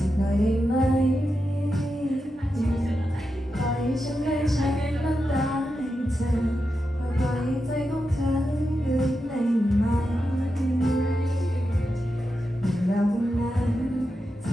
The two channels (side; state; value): both; normal; correlation 0.88